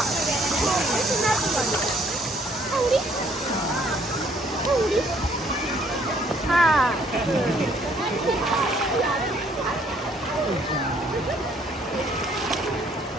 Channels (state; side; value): normal; both; correlation 0.64